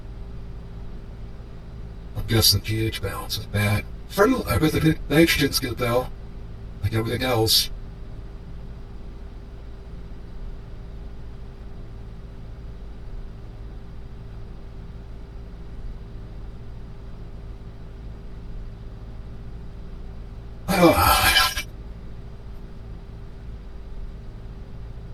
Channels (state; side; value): identical; both; correlation 1.00